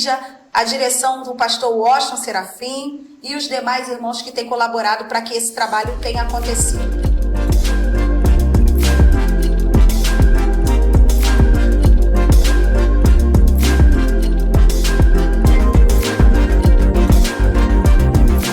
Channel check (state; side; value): identical; both; correlation 1.00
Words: a direção do pastor Washington Serafim e os demais irmãos que têm colaborado para que esse trabalho tenha acontecido.